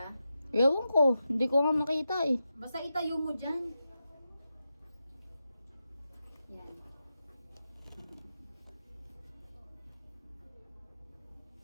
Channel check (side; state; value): both; inverted; correlation -0.89